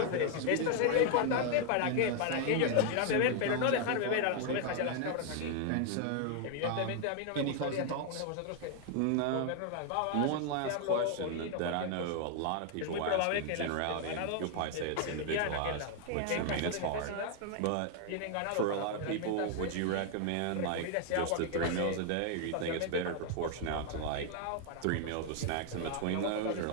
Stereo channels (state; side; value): different; both; correlation 0.00